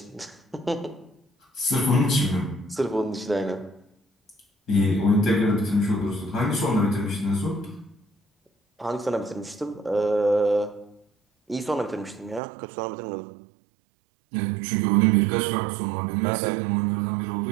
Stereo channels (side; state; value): left; drops out; at 12.4 s